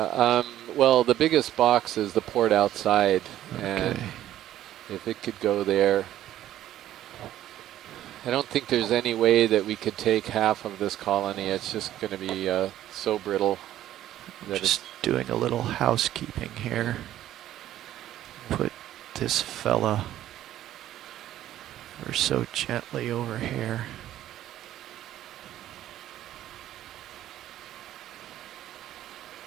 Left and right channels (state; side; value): quieter; left; 12.8 dB